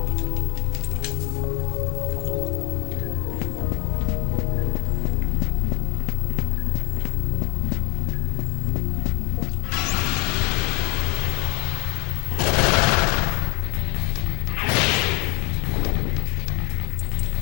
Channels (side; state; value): right; quieter; 31.4 dB